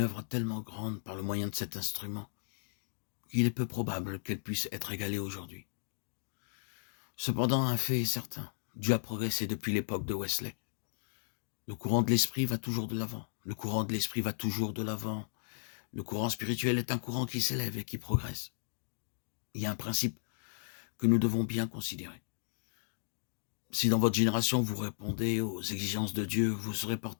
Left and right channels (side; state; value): right; silent; digital silence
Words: œuvre tellement grande par le moyen de cet instrument qu'il est peu probable qu'elle puisse être égalée aujourd'hui. Cependant, un fait est certain, Dieu a progressé depuis l'époque de Wesley. Le courant de l'esprit va toujours de l'avant. Le courant de l'esprit va toujours de l'avant. Le courant spirituel est un courant qui s'élève et qui progresse. Il y a un principe que nous devons bien considérer. Si dans votre génération vous répondez aux exigences de Dieu, vous serez